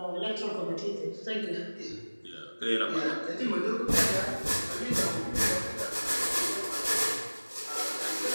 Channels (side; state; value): both; inverted; correlation -1.00